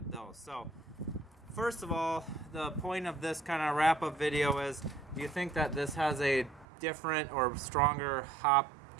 those. So first of all, the point of this kind of wrap-up video is, do you think that this has a different or stronger hop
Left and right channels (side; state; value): left; drops out; at 6.7 s